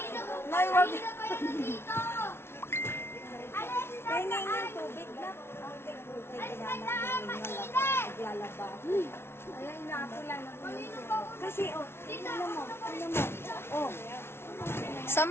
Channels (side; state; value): right; late; 0.12 ms